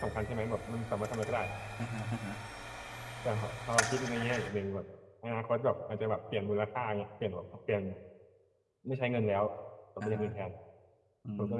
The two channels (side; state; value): both; identical; correlation 1.00